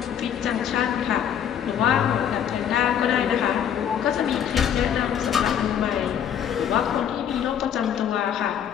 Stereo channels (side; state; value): right; quieter; 9.1 dB